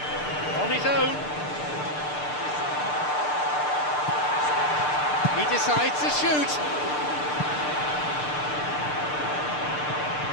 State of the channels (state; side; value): late; right; 6.7 ms